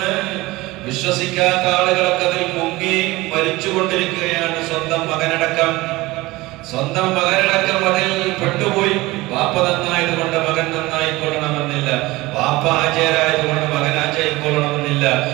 വിശ്വസിക്കാത്ത ആളുകളൊക്കെ അതിൽ മുങ്ങി മരിച്ചുകൊണ്ടിരിക്കുകയാണ്. സ്വന്തം മകനടക്കം അതിൽ പെട്ടുപോയി. വാപ്പ നന്നായതുകൊണ്ട് മകൻ നന്നായിക്കൊള്ളണമെന്നില്ല. വാപ്പ ആചാരായതുകൊണ്ട് മകൻ ആചാരിക്കൊള്ളണമെന്നില്ല.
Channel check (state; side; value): quieter; left; 20.3 dB